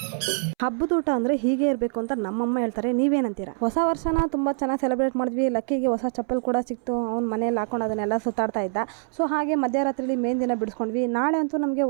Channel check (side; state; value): left; silent; 62 dB below the other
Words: ಹಬ್ಬದ ಊಟ ಅಂದರೆ ಹೀಗೆ ಇರಬೇಕು ಅಂತ ನಮ್ಮಮ್ಮ ಹೇಳ್ತಾರೆ. ನೀವೇನಂತೀರಾ? ಹೊಸ ವರ್ಷನ ತುಂಬ ಚೆನ್ನಾಗಿ ಸೆಲೆಬ್ರೇಟ್ ಮಾಡಿದ್ವಿ. ಲಕ್ಕಿಗೆ ಹೊಸ ಚಪ್ಪಲ್ ಕೂಡ ಸಿಕ್ತು. ಅವ್ನು ಮನೇಲಿ ಹಾಕೊಂಡು ಅದನ್ನೆಲ್ಲ ಸುತ್ತಾಡ್ತಾ ಇದ್ದ. ಸೊ ಹಾಗೆ ಮಧ್ಯರಾತ್ರಿಲಿ ಮೇನ್ ದಿನ ಬಿಡಿಸ್ಕೊಂಡ್ವಿ. ನಾಳೆ ಅಂತೂ ನಮಗೆ